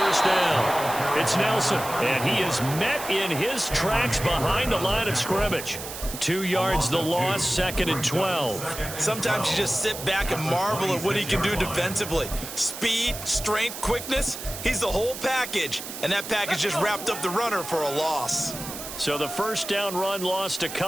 down. It's Nelson, and he is met in his tracks behind the line of scrimmage. 2 yards the loss, 2nd and 12. Sometimes you just sit back and marvel at what he can do defensively. Speed, strength, quickness, he's the whole package. And that package just wrapped up the runner for a loss. So the first down run lost a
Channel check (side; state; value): right; noise; hiss, 9 dB below the sound